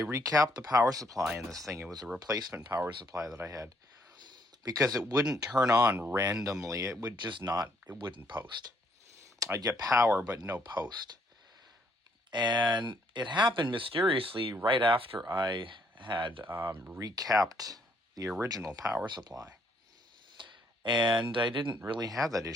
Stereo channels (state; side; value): normal; both; correlation 0.68